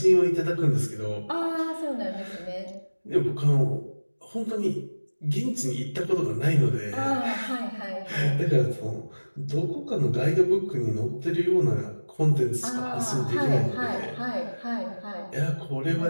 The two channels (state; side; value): inverted; both; correlation -1.00